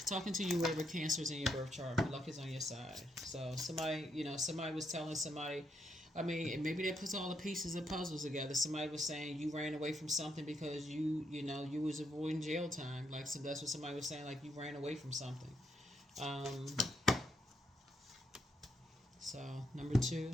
talking to you wherever Cancer's in your birth chart. Luck is on your side. So somebody, you know, somebody was telling somebody, I mean, maybe they put all the pieces of puzzles together. Somebody was saying you ran away from something because you know, you was avoiding jail time. Like, so that's what somebody was saying, like you ran away from something. So number 2,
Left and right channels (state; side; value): normal; both; correlation 0.78